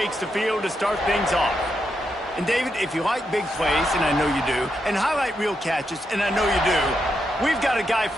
the field to start things off. And David, if you like big plays, and I know you do, and highlight real catches, and I know you do, we've got a guy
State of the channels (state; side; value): normal; both; correlation 0.83